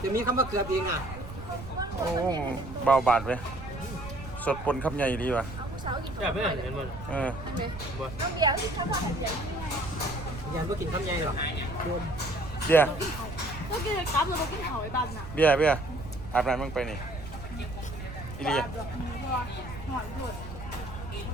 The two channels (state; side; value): noise; right; rumble, 11 dB below the sound